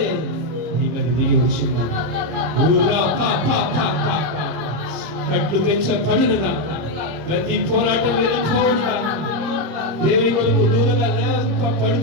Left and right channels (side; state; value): left; late; 26 ms